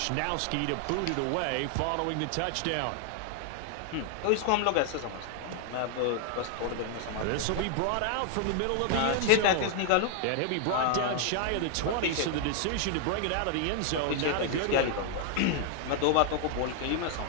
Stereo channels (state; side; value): different; both; correlation 0.00